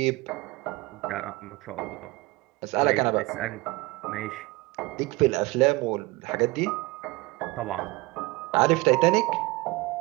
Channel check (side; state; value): left; quieter; 22.7 dB